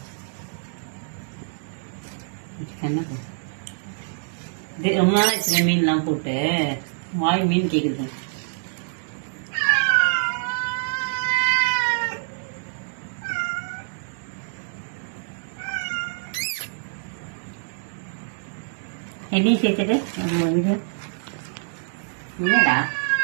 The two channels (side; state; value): left; silent; digital silence